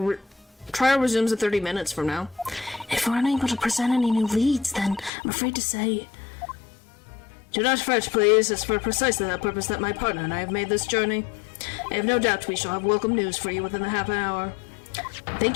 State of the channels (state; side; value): drops out; right; at 5.1 s